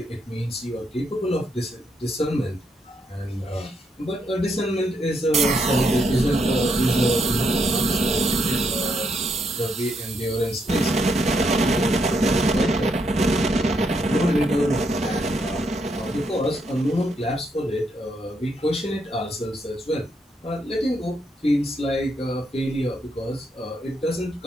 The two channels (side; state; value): both; normal; correlation 0.77